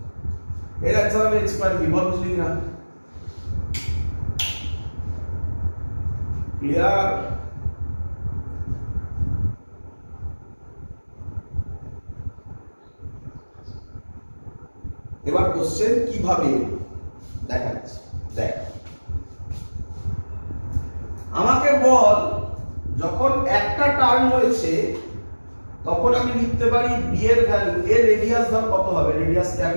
এর অ্যান্সার হবে x² b বল বুঝলি না ক্লিয়ার এবার কোশ্চেন কিভাবে দেখাচ্ছি দেখ আমাকে বল যখন একটা টার্ন হয়েছে তখন আমি লিখতে পারি b এর ভ্যালু এর রেডিয়াস ধর কত হবে রেডিয়াস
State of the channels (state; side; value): inverted; both; correlation -1.00